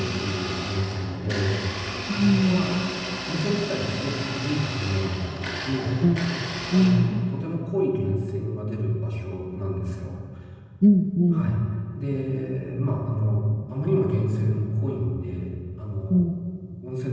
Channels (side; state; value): both; identical; correlation 1.00